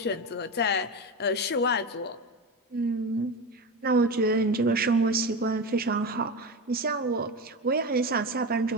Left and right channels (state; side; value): normal; both; correlation 0.21